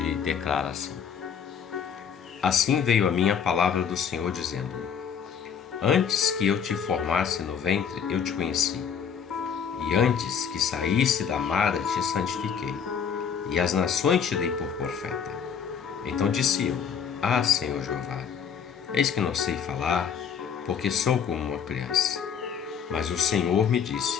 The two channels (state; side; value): quieter; right; 7.3 dB